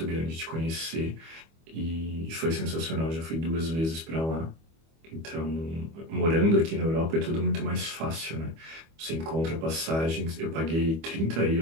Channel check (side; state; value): left; late; 25 ms